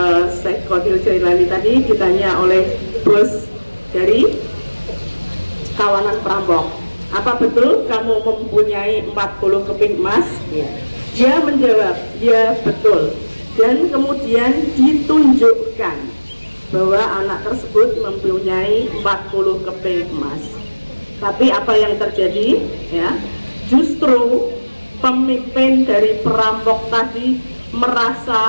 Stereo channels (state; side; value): inverted; both; correlation -1.00